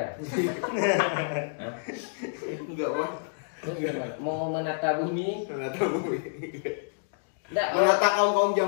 Hah? Enggak mon. Terus gimana? Mau menata bumi? Menata bumi. Nggak, Menata kaum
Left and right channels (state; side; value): silent; right; digital silence